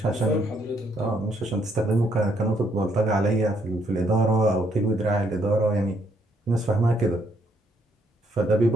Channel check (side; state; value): both; normal; correlation 0.71